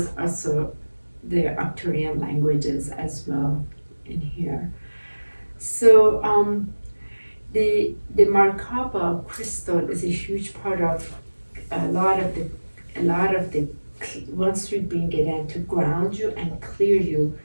also the Arcturian languages as well in here. So the Merkaba crystal is a huge part of a lot of the once we bring it in to ground you and clear you.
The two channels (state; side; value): inverted; both; correlation -1.00